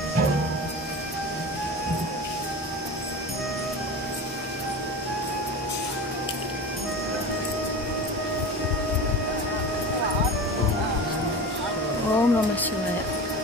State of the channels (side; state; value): both; normal; correlation 0.30